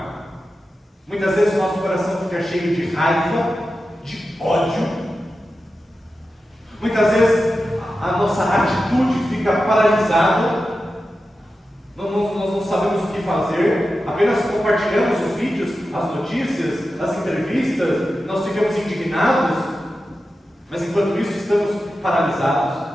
Muitas vezes o nosso coração fica cheio de raiva, de ódio. Muitas vezes a nossa atitude fica paralisada, nós não sabemos o que fazer, apenas compartilhamos os vídeos, as notícias, as entrevistas, nós ficamos indignados, mas enquanto isso estamos paralisados.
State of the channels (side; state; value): both; normal; correlation 0.92